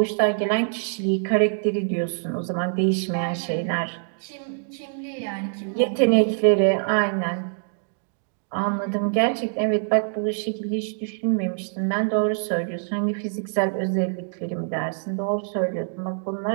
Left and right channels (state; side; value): silent; left; digital silence